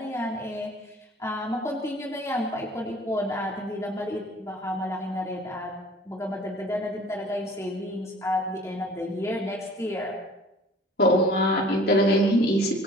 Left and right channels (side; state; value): both; normal; correlation 0.49